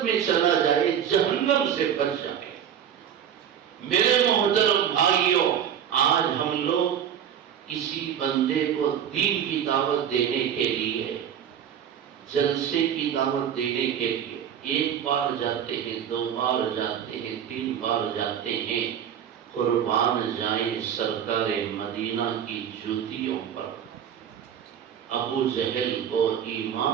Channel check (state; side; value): quieter; left; 9.0 dB